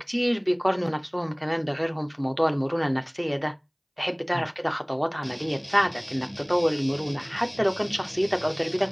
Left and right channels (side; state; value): both; identical; correlation 1.00